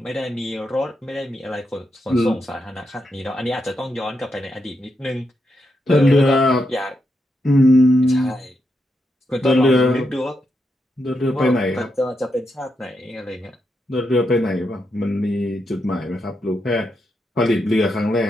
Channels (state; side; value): normal; both; correlation 0.83